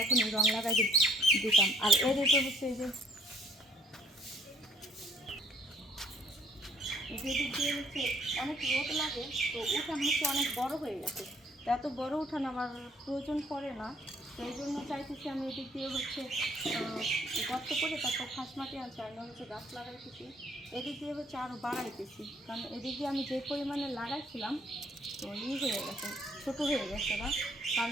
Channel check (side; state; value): both; normal; correlation 0.62